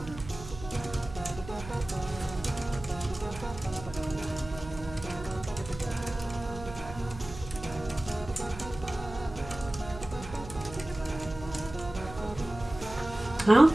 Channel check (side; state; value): right; noise; hum, 13 dB below the sound